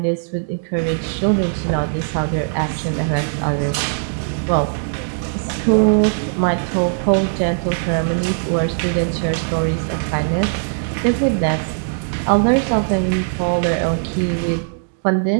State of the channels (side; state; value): left; silent; digital silence